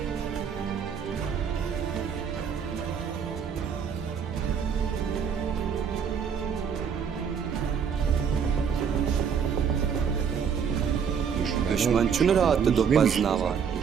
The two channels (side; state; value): left; quieter; 7.1 dB